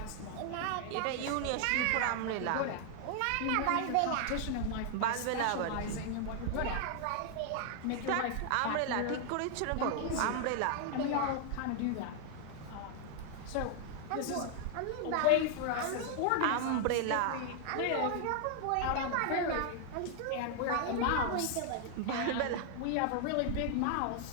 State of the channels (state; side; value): different; both; correlation 0.00